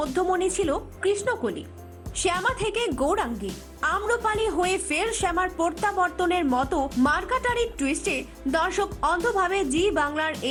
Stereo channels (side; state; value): both; identical; correlation 1.00